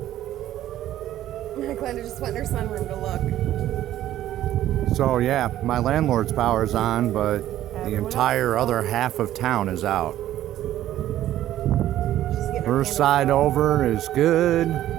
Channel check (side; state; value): left; quieter; 13.0 dB